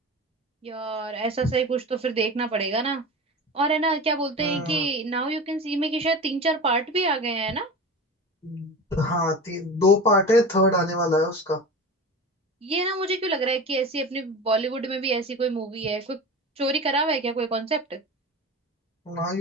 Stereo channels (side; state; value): both; normal; correlation 0.31